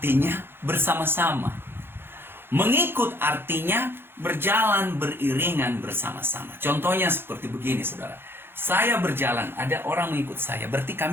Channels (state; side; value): late; left; 0.11 ms